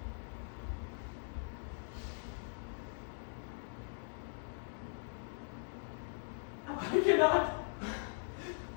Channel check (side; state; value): right; silent; digital silence